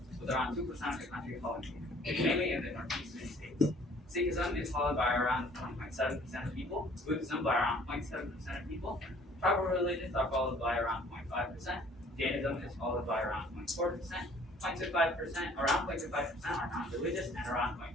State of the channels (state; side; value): normal; both; correlation 0.55